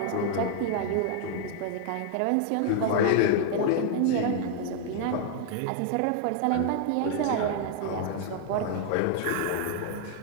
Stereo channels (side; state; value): both; different; correlation 0.00